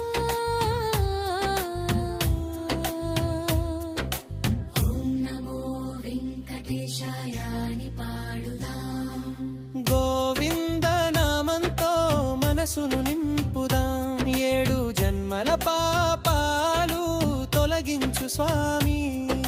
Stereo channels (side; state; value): both; identical; correlation 1.00